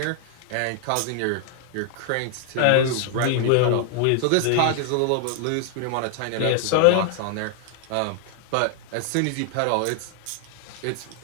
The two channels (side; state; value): both; different; correlation 0.00